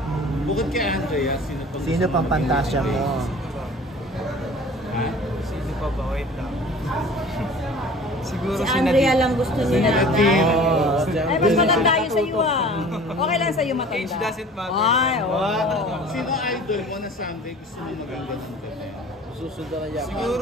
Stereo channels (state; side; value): normal; both; correlation 0.45